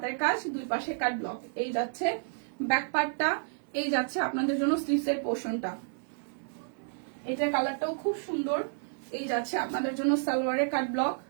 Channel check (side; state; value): left; silent; digital silence